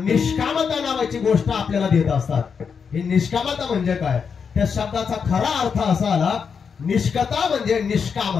नावाची गोष्ट आपल्याला देत असतात. ही निष्कामता म्हणजे काय, त्या शब्दाचा खरा अर्थ असा आला, निष्कता म्हणजे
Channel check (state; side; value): quieter; right; 6.2 dB